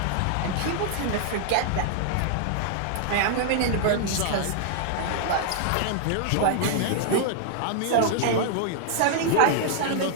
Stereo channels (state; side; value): different; both; correlation -0.01